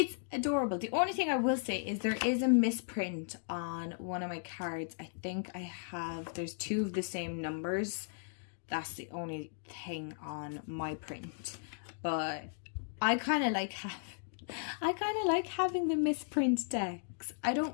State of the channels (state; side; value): silent; right; digital silence